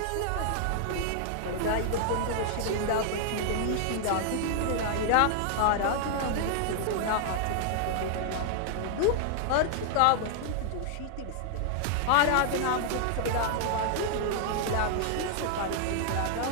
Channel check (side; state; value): both; different; correlation 0.00